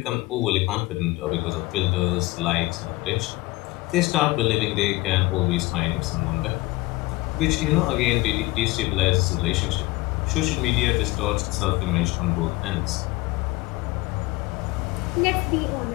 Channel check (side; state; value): right; quieter; 21.0 dB